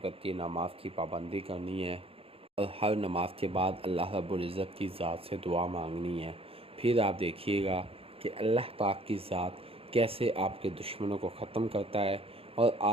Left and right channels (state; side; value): late; left; 0.27 ms